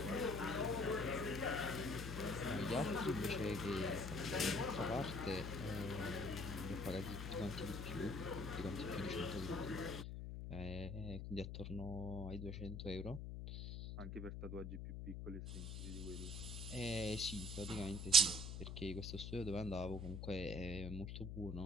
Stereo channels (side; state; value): left; noise; hum, 5 dB below the sound